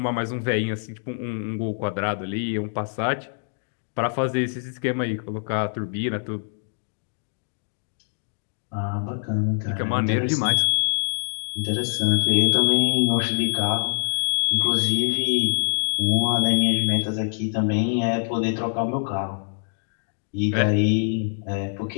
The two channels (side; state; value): right; silent; digital silence